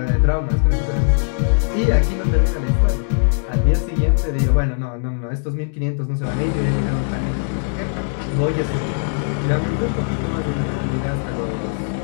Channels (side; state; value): right; silent; digital silence